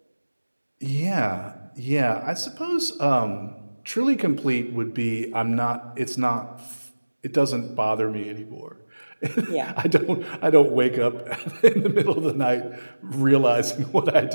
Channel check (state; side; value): inverted; both; correlation -1.00